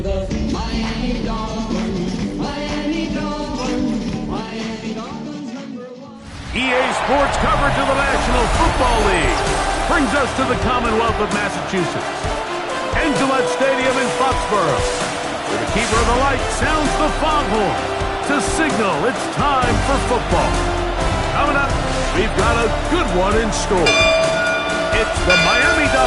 the Miami Dolphins, Miami Dolphins, Miami Dolphins #1. EA Sports coverage of the National Football League brings us to the Commonwealth of Massachusetts and Gillette Stadium in Foxborough, where the keeper of the light sounds the foghorn to signal it's time for football. Coming up, we've got a good one in store. It's the Miami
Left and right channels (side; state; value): both; identical; correlation 1.00